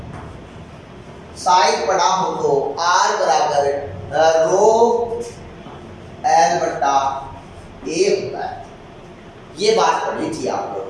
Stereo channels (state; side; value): identical; both; correlation 1.00